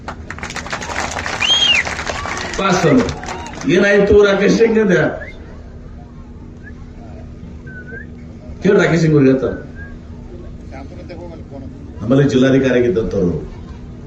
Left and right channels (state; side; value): identical; both; correlation 1.00